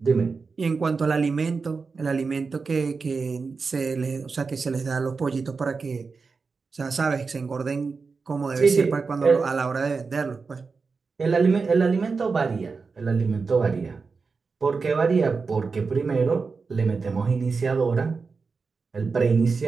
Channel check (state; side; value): quieter; left; 4.7 dB